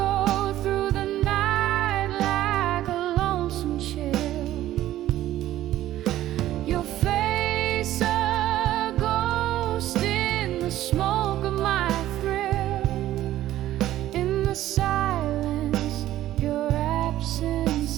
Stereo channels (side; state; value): left; quieter; 13.9 dB